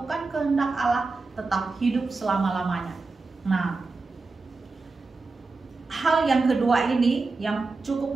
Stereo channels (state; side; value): quieter; left; 3.8 dB